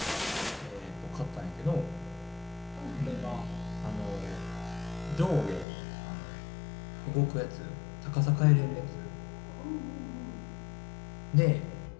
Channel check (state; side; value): drops out; right; at 5.7 s